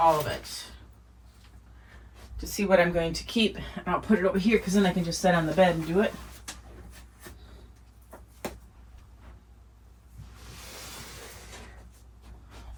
of it. To see what I'm going to keep. And I'll put it over here because then I can just sit on the bed and do it.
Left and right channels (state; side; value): identical; both; correlation 1.00